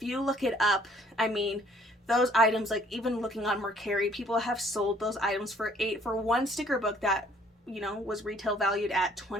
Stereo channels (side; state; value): both; normal; correlation 0.61